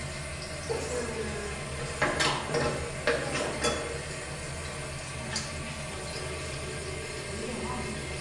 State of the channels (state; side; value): identical; both; correlation 1.00